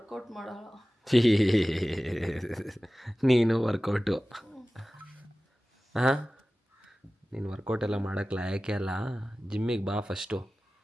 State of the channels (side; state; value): both; normal; correlation 0.96